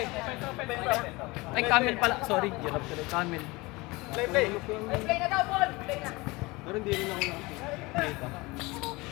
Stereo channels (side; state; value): right; quieter; 23.2 dB